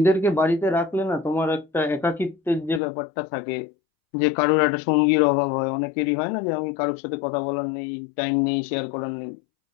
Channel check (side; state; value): right; drops out; at 2.8 s